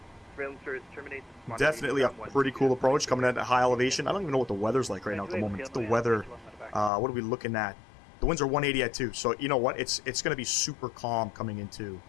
Surveillance service terminates. Definitely a pretty cool approach coming at a high elevation. I don't even know what the weather's like right now at the moment. The weather, what are we looking at? The winds are 180 at 2. So, you know what? It's going to be super calm coming into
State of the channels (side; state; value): right; drops out; at 6.9 s